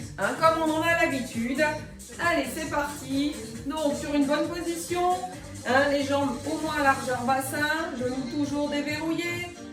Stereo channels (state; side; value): identical; both; correlation 1.00